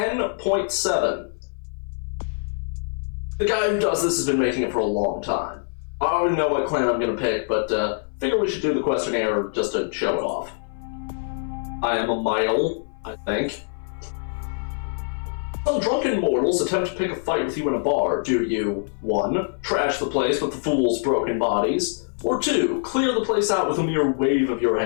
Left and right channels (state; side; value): silent; right; 59 dB below the other